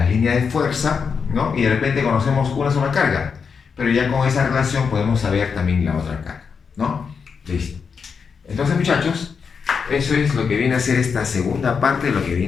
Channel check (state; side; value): quieter; right; 5.9 dB